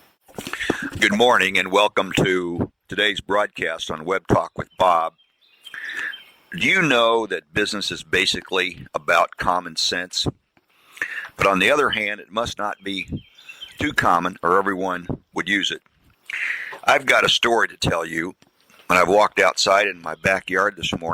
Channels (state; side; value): identical; both; correlation 1.00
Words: Good morning and welcome to today's broadcast on Web Talk with Bob. Do you know that business is basically about common sense? But on the other hand, it must not be too common or everyone would use it. I've got a story to tell you, and I've walked outside in my backyard this